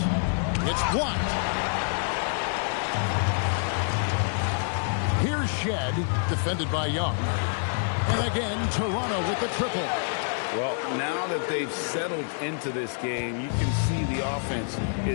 It's blocked. Here's Shed, defended by Young. And again, Toronto with the triple. Well, now that they've settled into this game, you can see the offense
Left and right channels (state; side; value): silent; right; 60 dB below the other